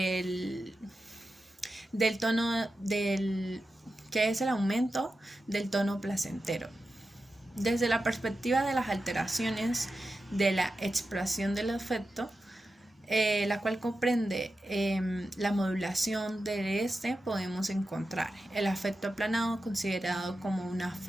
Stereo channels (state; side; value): normal; both; correlation 0.91